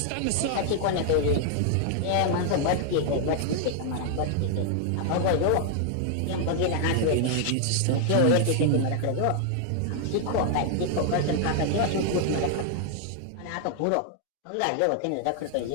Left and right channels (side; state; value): both; different; correlation 0.00